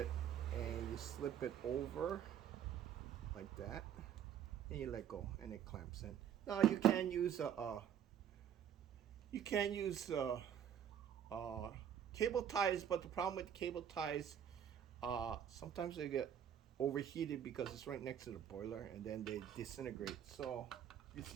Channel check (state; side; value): quieter; left; 9.2 dB